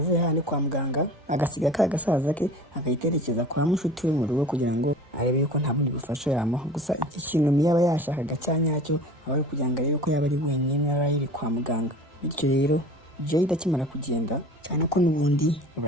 hano kwa muganga agasiga ka gasaza ke akayiterekeza kwa mushuti we mu rugo kugira ngo arebe yuko nta bundi bufasha yamuha. Gusa iki kintu Mia aba yashakaga cyanyacyo aba ari kugira ngo arebe ko yaba ari wenyine Riley kwa muganga. Bityo rero Jade akimara kugenda, cyane ko n'ubundi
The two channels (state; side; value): normal; both; correlation 0.41